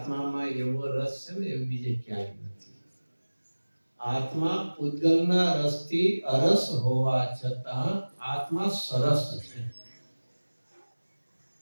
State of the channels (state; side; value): inverted; both; correlation -1.00